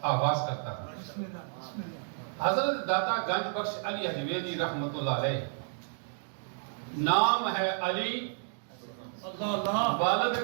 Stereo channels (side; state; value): left; silent; digital silence